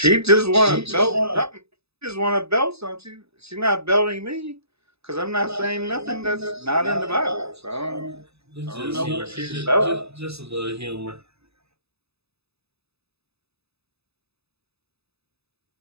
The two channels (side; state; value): left; late; 0.79 ms